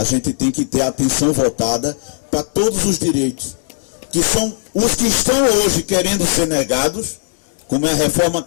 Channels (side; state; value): right; silent; digital silence